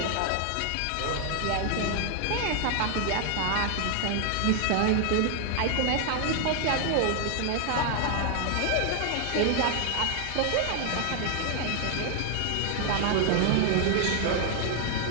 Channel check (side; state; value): both; different; correlation 0.00